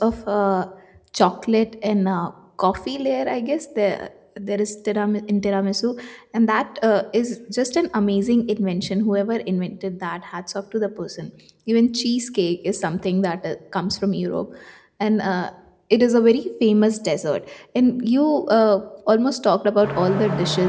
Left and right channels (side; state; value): both; identical; correlation 1.00